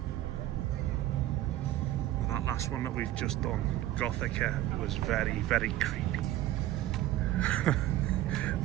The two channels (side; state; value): left; quieter; 14.4 dB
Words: Well, that last one that we've just done, Gothica, was very, very creepy.